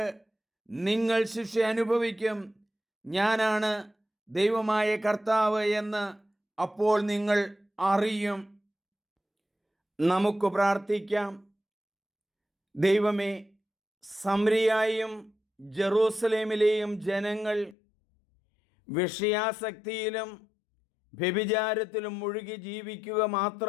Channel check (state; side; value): drops out; right; at 17.8 s